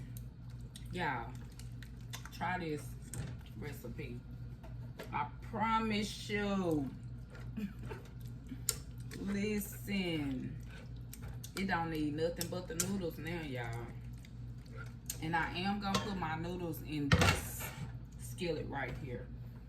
Y'all, try this recipe. I promise you. Listen, it don't need nothing but the noodles now, y'all. And I am gonna put my noodles in this skillet right here.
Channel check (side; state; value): both; identical; correlation 1.00